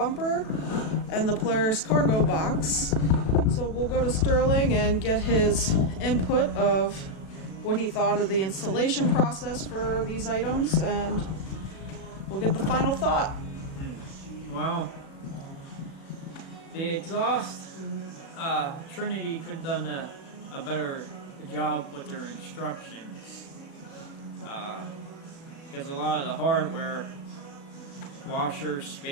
and the Polaris cargo box. So we'll go to Sterling and get his input of what he thought of the installation process for these items, and we'll get the final thought. Wow. The exhaust, Trinity could have done a better job with their instructions. Because a lot of the hardware, washers,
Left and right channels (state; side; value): late; right; 36 ms